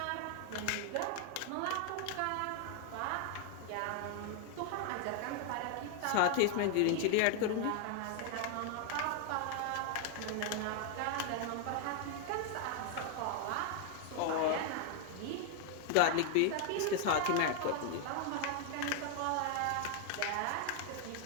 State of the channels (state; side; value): different; both; correlation 0.00